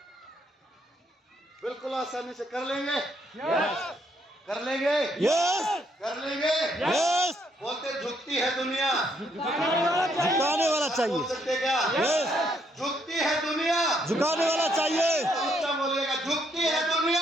बिल्कुल आसानी से कर लेंगे। कर लेंगे। यस। कर लेंगे। यस। बोलते झुकती है दुनिया, झुकाने वाला बोल चाहिए। सकते क्या? यस। झुकती है दुनिया, झुकाने वाला चाहिए। ऊंचा बोलिएगा, झुकती है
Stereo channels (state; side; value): normal; both; correlation 0.72